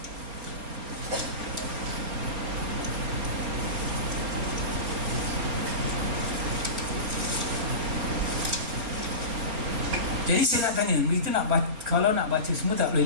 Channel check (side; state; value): left; late; 4.3 ms